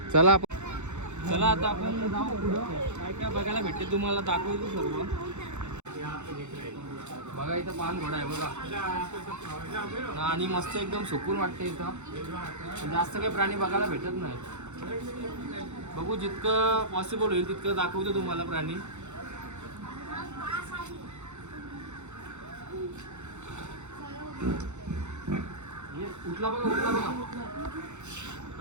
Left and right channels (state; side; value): late; left; 0.83 ms